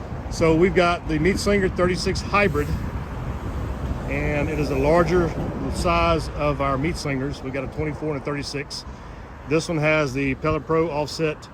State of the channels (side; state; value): both; identical; correlation 1.00